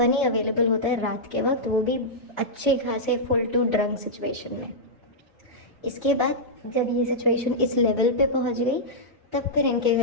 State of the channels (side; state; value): both; normal; correlation -0.10